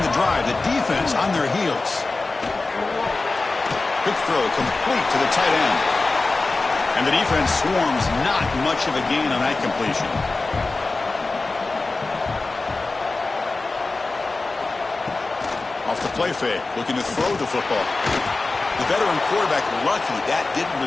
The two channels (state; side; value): quieter; right; 3.5 dB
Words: the drive. The defense on their heels. Quick throw complete to the tight end. And the defense swarms, not much of a gain on that completion. Off the play fake, looking to throw the football. The veteran quarterback lucky that didn't